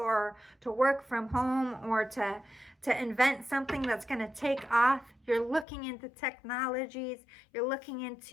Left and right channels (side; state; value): right; drops out; at 5.7 s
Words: to work from home or to invent something that's going to take off. You're looking into technologies. You're looking